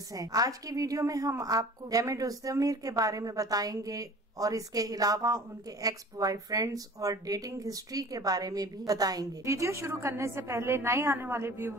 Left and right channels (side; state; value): both; normal; correlation 0.44